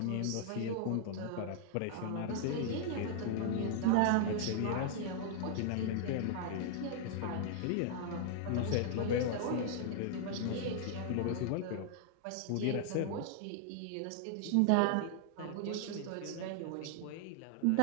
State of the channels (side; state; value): both; different; correlation -0.01